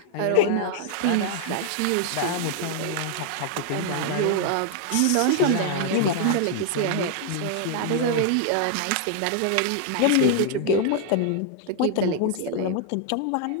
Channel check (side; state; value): both; different; correlation 0.00